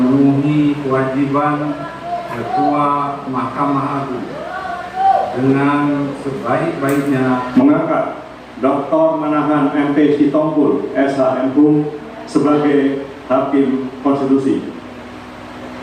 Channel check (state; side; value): identical; both; correlation 1.00